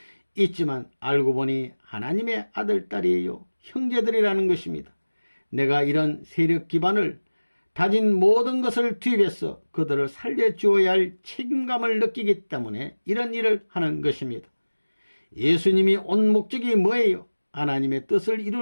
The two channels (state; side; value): inverted; both; correlation -1.00